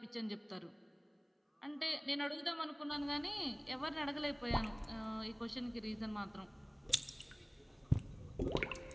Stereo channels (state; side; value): identical; both; correlation 1.00